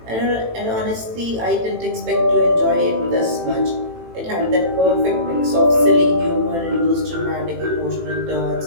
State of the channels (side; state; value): left; late; 18 ms